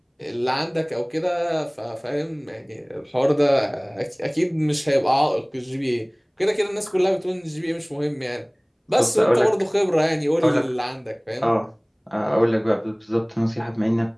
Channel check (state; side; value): identical; both; correlation 1.00